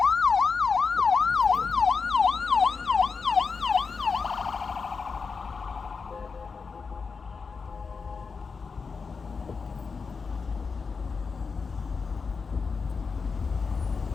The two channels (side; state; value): right; quieter; 5.0 dB